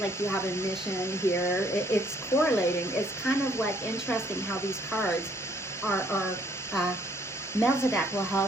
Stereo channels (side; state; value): both; normal; correlation 0.65